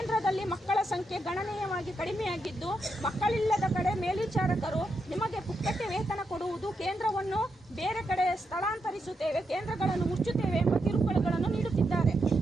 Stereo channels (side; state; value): both; normal; correlation 0.83